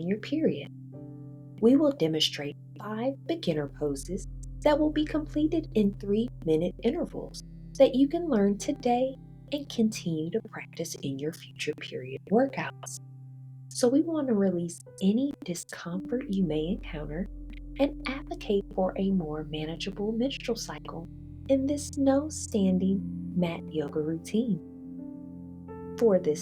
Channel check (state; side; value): identical; both; correlation 1.00